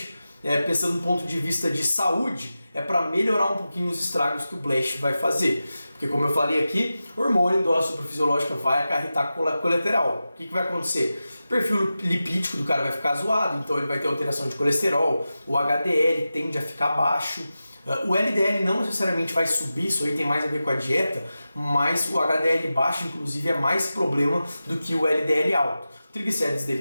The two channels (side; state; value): both; inverted; correlation -0.93